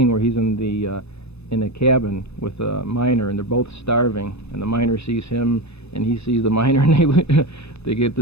where he's in a cabin with a miner, and they're both starving, and the miner sees him, and he sees the miner, and they get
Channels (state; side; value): late; right; 0.79 ms